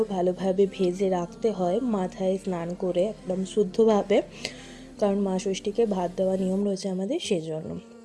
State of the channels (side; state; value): both; identical; correlation 1.00